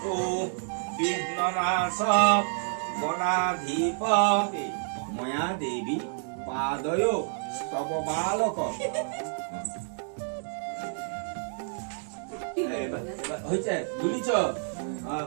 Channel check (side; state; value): left; silent; digital silence